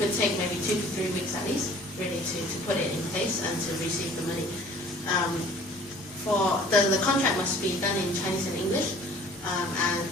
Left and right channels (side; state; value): both; normal; correlation 0.50